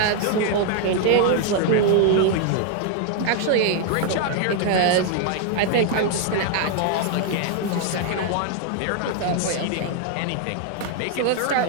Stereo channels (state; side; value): different; both; correlation 0.00